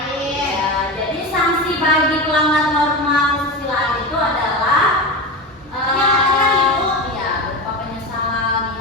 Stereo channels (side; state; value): both; normal; correlation 0.23